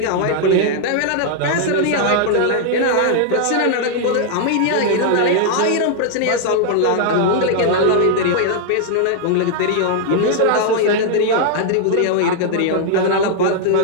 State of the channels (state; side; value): different; both; correlation -0.01